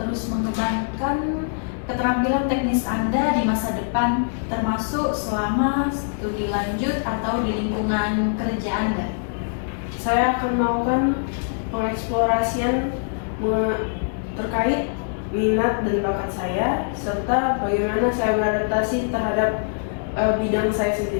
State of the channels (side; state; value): right; silent; 63 dB below the other